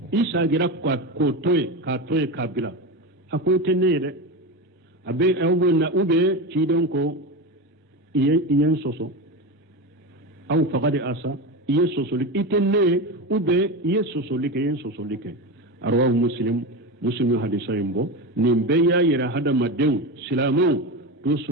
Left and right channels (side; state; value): both; normal; correlation 0.20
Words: إيسا غير كاتوي كابلا أكو تنيره أبي أوبنا أوبي تيرن كو إيه سوسو أو فقد أسى إيه سوسو لك إتنيه أوبي إيه سوسو لك أرواه مسلم hadisa yimbo nin be ya yira hada maden silamu to